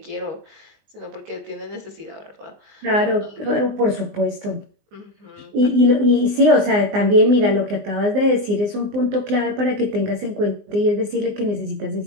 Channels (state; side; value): late; left; 19 ms